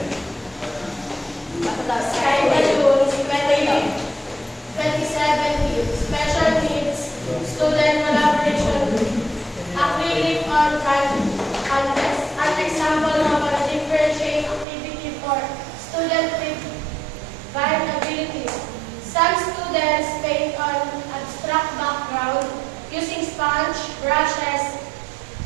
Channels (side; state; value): left; drops out; at 14.7 s